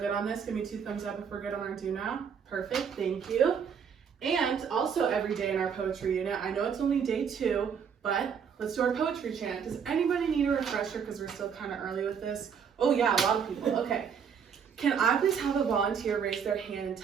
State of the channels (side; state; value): left; quieter; 7.0 dB